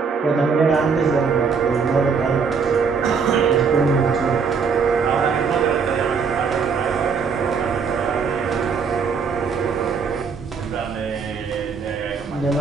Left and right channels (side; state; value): left; quieter; 5.7 dB